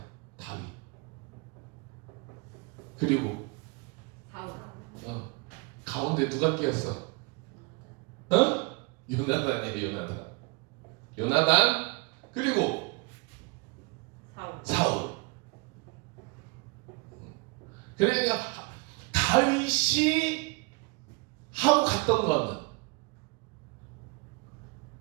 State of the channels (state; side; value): quieter; left; 28.7 dB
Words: 다윗. 그리고 사울. 가운데 누가 끼었어? 요나단이야. 요나단. 그리고 사울. 사울. 그러니까 다윗이 하고 갔던 거는